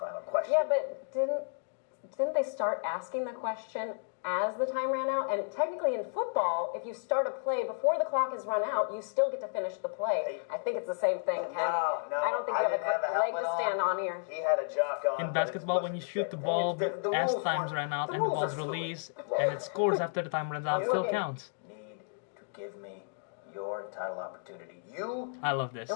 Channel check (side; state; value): right; silent; digital silence